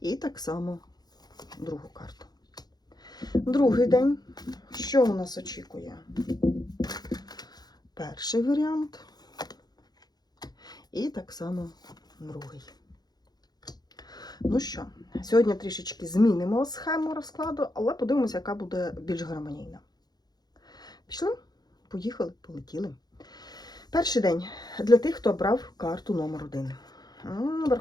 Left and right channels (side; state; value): right; late; 0.19 ms